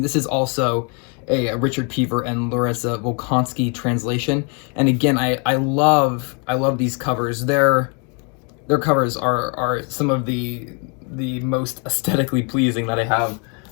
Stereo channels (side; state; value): right; quieter; 36.0 dB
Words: is also a Richard Pever and Larissa Volkansky translation. And again, I love these covers. Their covers are some of the most aesthetically pleasing that I have